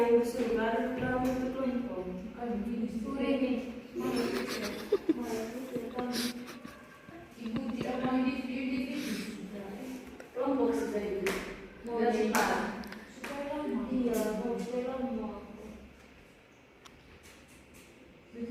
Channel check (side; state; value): both; identical; correlation 1.00